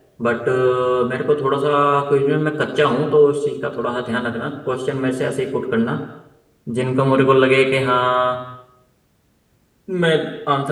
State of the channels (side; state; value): both; identical; correlation 1.00